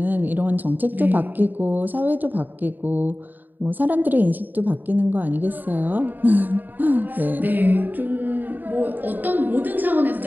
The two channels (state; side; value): late; left; 0.088 ms